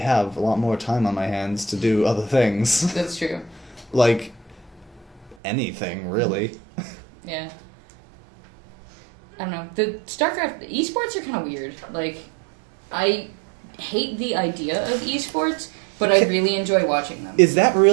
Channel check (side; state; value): left; drops out; at 5.4 s